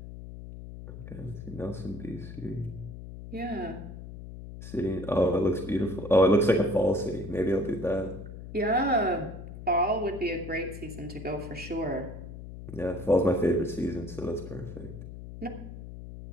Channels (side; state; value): left; noise; hum, 12 dB below the sound